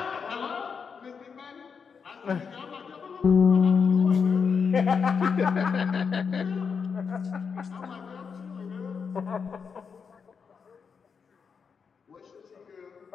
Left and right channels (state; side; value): quieter; right; 6.0 dB